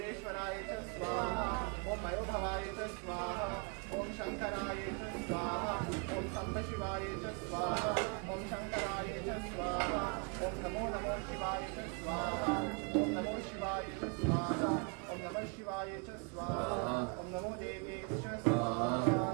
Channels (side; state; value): left; quieter; 35.3 dB